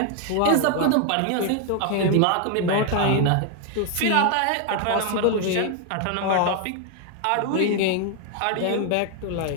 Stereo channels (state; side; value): different; both; correlation 0.00